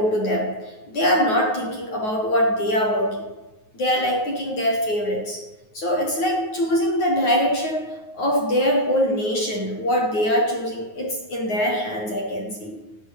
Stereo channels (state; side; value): late; right; 9.4 ms